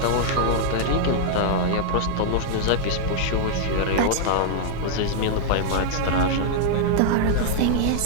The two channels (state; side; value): different; both; correlation -0.01